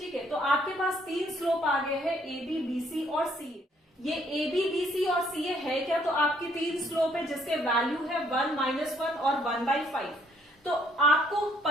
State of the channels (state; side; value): normal; both; correlation 0.66